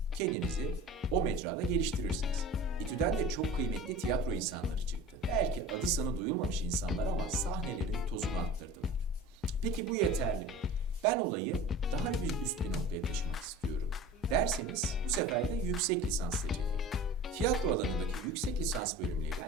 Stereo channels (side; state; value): both; normal; correlation 0.39